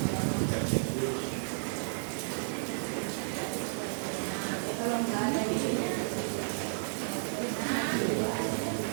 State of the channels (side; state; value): left; silent; 56 dB below the other